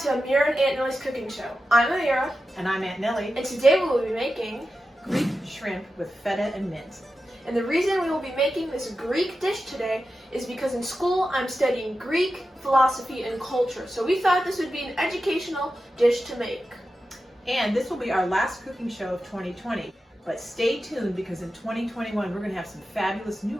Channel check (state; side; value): normal; both; correlation 0.91